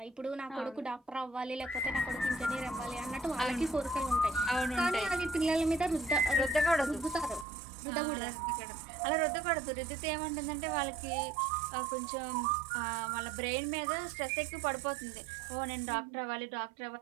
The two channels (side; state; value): left; drops out; at 7.5 s